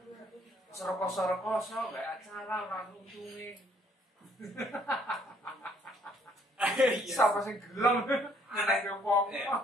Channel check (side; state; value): both; normal; correlation 0.64